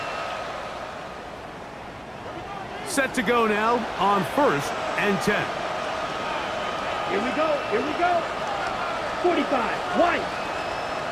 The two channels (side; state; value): both; identical; correlation 1.00